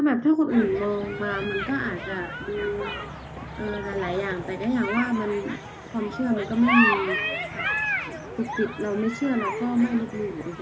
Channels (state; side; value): identical; both; correlation 1.00